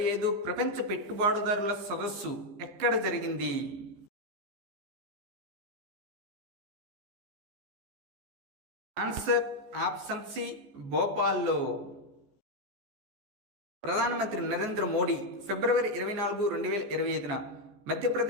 ప్రపంచ పెట్టుబడిదారుల సదస్సు ఎక్కడ జరిగింది? ఆన్సర్ ఆప్షన్ సి భోపాల్లో. ప్రధానమంత్రి నరేంద్ర మోడీ ఫిబ్రవరి 24, 2025న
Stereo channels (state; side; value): late; left; 15 ms